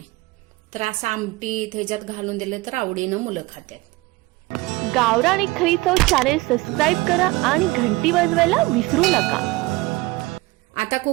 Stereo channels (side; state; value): left; quieter; 21.3 dB